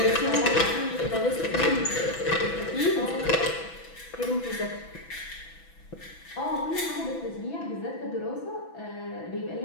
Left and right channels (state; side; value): late; right; 6.1 ms